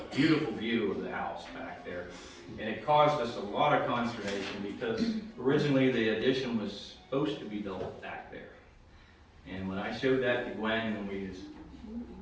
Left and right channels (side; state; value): both; identical; correlation 1.00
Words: Beautiful view of the house back there. And it caused us a lot of consternation because originally the addition was supposed to be built back there. And when I showed that to Gwen and